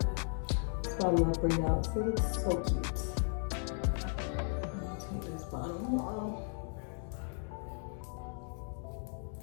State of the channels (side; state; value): right; silent; 54 dB below the other